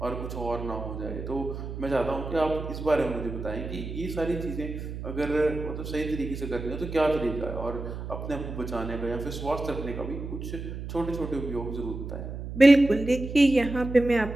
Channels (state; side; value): noise; right; hum, 7 dB below the sound